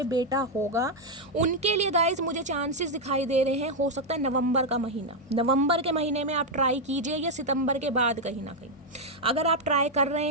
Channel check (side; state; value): both; normal; correlation 0.01